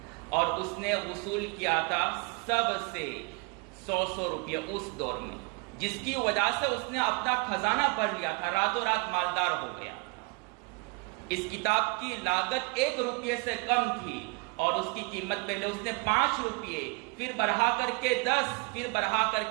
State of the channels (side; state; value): left; quieter; 30.1 dB